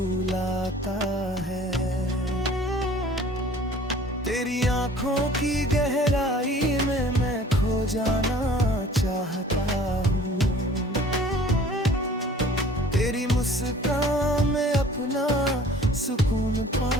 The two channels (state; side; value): normal; both; correlation 0.50